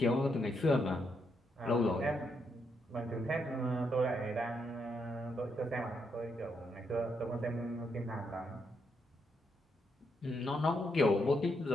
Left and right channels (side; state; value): both; normal; correlation 0.79